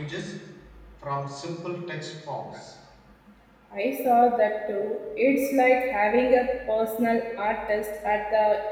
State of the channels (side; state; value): both; identical; correlation 1.00